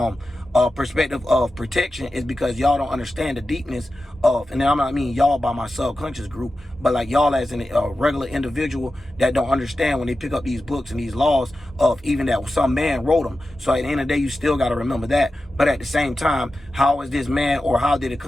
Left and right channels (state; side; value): normal; both; correlation 0.93